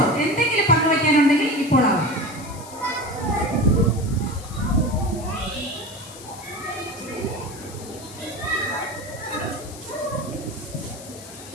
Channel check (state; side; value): noise; left; hiss, 16 dB below the sound